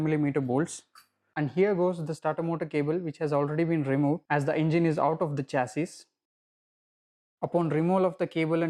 bolts. And here goes the starter motor cable, which has already been removed as the engine is out of the chassis. Upon removal of the cable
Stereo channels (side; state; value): both; identical; correlation 1.00